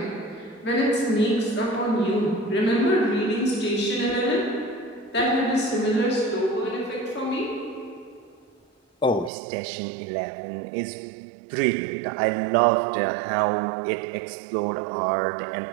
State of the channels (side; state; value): left; drops out; at 9.3 s